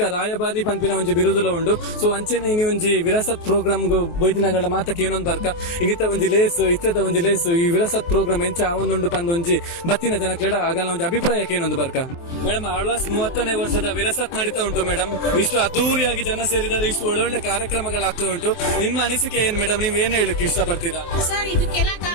ರಾಯಭಾರಿ ಪಂಪಿನ ಒಂಜಿ ಬಿರುದುಲ ಉಂಡು ಸೊ ಅಂಚನೆ ಇನಿ ಒಂಜಿ ವಿರಾಸತ್ ಪ್ರೋಗ್ರಾಮ್ ಬೈದಿನಗಳ ಮಾತಕ್ಕೆ ಏನೊಂದು ಬರ್ಕ ಇನ್ನಿತ ಒಂಜಿ ಲೇಸ್ ಇತ್ತದ ಒಂಜಿ ಲೇಸ್ ಈ ವಿರಾಸತ್ ಪ್ರೋಗ್ರಾಮ್ ಎಂಚ ಅವೊಂದುಂಡು ಪಂದು ಒಂಜಿ ಬತ್ತಿನ ಜನಕ್ಲೆಡ ಆಗಲ್ಲ ಒಂಜಿ ಅಭಿಪ್ರಾಯಕ್ಕೆ ಏನೊಂದು ಬರ್ಕ ಮೇಡಮ್ ಆಳ್ವಾಸ್ 30ನೇ ವರ್ಷದ ವಿರಾಸತ್ ನಡೀತಾ ಉಂಟು ಮೇಡಮ್. ಇಷ್ಟು ಅದ್ದೂರಿಯಾಗಿ ಜನ ಸೇರಿದ್ದಾರೆ, ಇಷ್ಟು ಒಳ್ಳೊಳ್ಳೆ ಕಾರ್ಯಕ್ರಮಗಳಾಗ್ತಾ ಉಂಟು. ನಿಮ್ಮ ಅನಿಸಿಕೆ ಏನ್ ಮೇಡಮ್? ನೀವ್ ಏನ್ ಹೇಳಕ್ಕೆ ಇಷ್ಟಪಡ್ತೀರಾ? ಸರ್, ಇದಕ್ಕೆಲ್ಲ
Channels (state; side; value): late; right; 24 ms